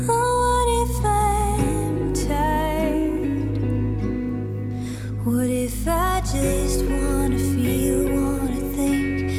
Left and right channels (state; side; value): identical; both; correlation 1.00